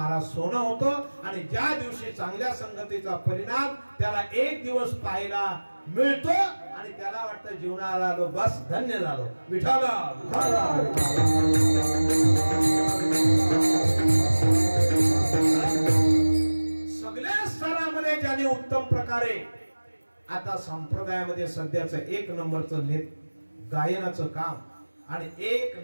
सोनं होतं. आणि ज्या दिवशी चांगल्या संगतीचा परिणाम त्याला एक दिवस पाहायला मिळतो आणि त्याला वाटतं जीवनाला आलो बस धन्य झालो. विठाला सगळ्या स्तरामध्ये ज्याने उत्तम प्रकारे आता संप्रदायामध्ये सध्याचं 1 नंबरचं गायनाचं काम आणि 1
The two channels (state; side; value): inverted; both; correlation -1.00